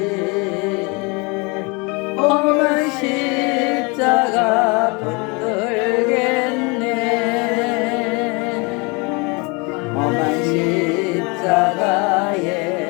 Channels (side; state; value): right; quieter; 29.4 dB